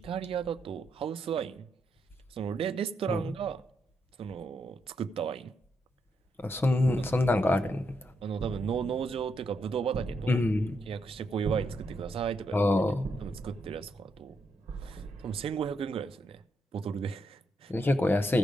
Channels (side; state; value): both; normal; correlation 0.80